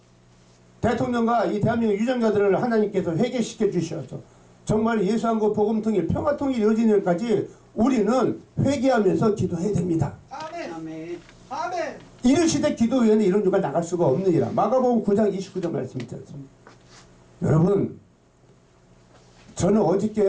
대통령과 이 대한민국 유정자들을 하나님께서 회개시켜 주셔서 정말 예수한국 복음통일 평화통일 이루어지는 날까지 우리는 회개하면서 기도해야 됩니다. 아멘. 아멘. 아멘. 이런 시대 기도위원회 이런 주가 나갈 수가 없느니라. 마가복음 9장 29절 말씀 있지 않습니까? 여러분 저는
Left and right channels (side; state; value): both; identical; correlation 1.00